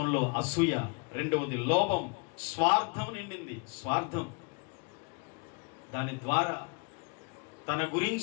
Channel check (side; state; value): right; quieter; 33.1 dB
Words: అసూయ, రెండవది లోభం, స్వార్థం నిండింది. స్వార్థం, దాని ద్వారా తన